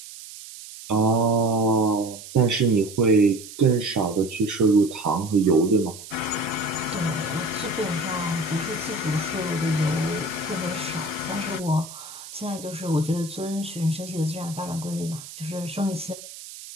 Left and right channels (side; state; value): right; noise; hiss, 14 dB below the sound